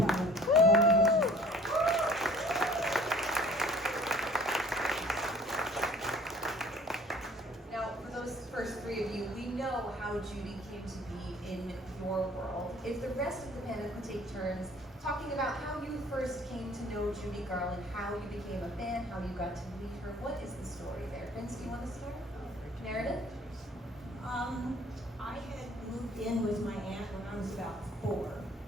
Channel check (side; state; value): both; normal; correlation 0.52